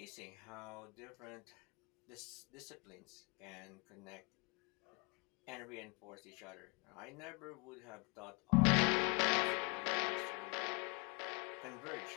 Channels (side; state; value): right; quieter; 30.8 dB